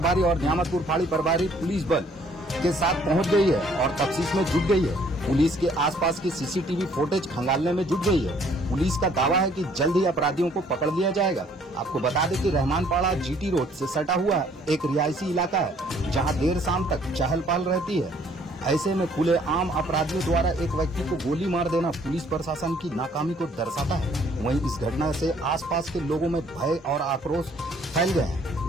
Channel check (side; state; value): both; normal; correlation 0.61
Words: और न्यामतपुर फाड़ी प्रभारी पुलिस बल के साथ पहुंच गई है और तफ्तीश में जुट गई है। पुलिस के आसपास की सीसीटीवी फुटेज खंगालने में जुट गई है। पुलिस का दावा है कि जल्द ही अपराधियों को पकड़ लिया जाएगा। आपको बता दें कि रहमानपाड़ा जीटी रोड से सटा हुआ एक रिहायशी इलाका है, जहां देर शाम तक चहल पहल रहती है। ऐसे में खुले आम अपराधियों द्वारा एक व्यक्ति को गोली मार देना पुलिस प्रशासन की नाकामी को दर्शाता है। वहीं इस घटना से आसपास के लोगों में भय और आक्रोश फैल गए हैं।